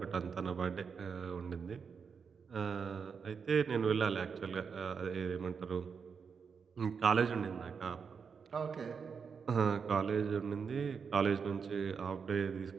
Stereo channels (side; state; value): left; quieter; 6.0 dB